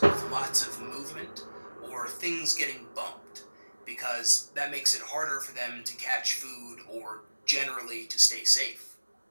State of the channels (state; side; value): inverted; both; correlation -1.00